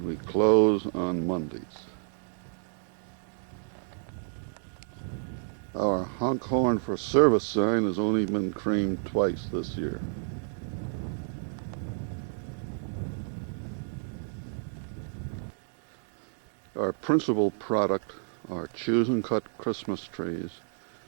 we close on Mondays. Our honk horn for service sign has only been creamed twice this year. Our principal product are choose and cut Christmas trees,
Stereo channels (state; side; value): silent; left; 58 dB below the other